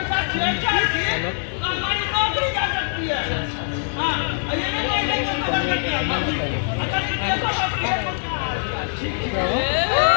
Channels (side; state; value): right; silent; 62 dB below the other